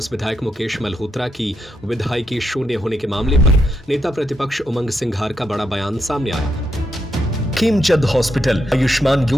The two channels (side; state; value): both; normal; correlation 0.81